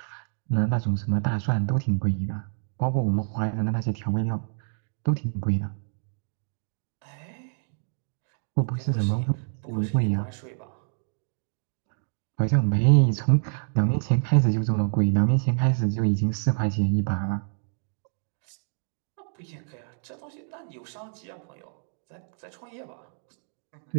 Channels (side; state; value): left; silent; digital silence